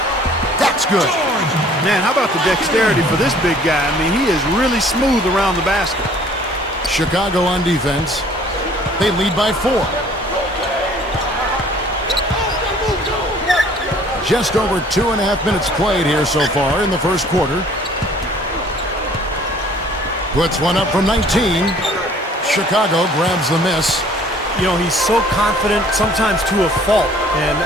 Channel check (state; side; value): normal; both; correlation 0.55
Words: That's good. Man, how about the dexterity for this big guy? I mean, he is really smooth around the basket. Chicago on defense. They lead by 4. Just over 2.5 minutes played here so far in the first quarter. Puts one up from 19. Chicago grabs the miss. You know, he's so confident, sometimes to a fault, and